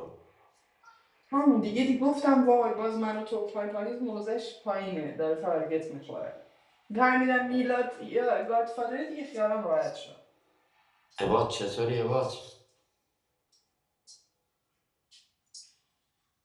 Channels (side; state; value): both; identical; correlation 1.00